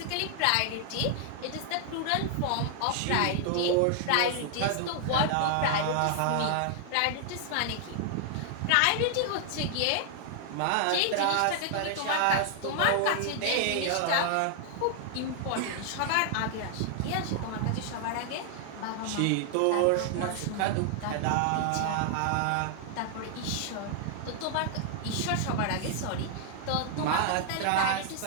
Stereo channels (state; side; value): different; both; correlation 0.00